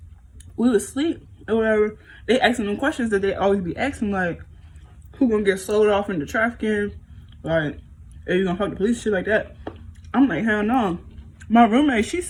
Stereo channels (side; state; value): both; identical; correlation 1.00